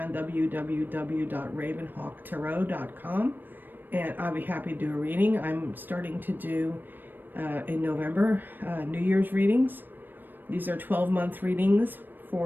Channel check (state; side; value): late; left; 0.092 ms